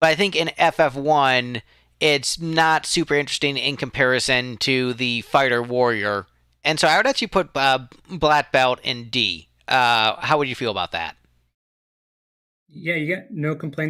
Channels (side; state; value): both; identical; correlation 1.00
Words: I think in FF1 it's not super interesting in comparison to the fighter warrior, and so I would actually put black belt in D. How would you feel about that? Yeah, you get no